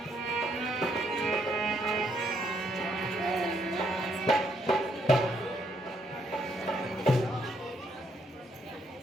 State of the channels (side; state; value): both; normal; correlation 0.73